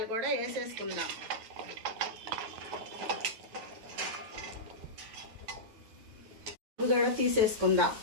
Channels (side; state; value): left; late; 9.3 ms